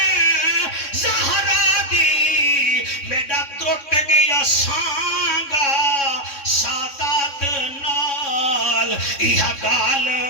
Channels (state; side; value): late; right; 3.6 ms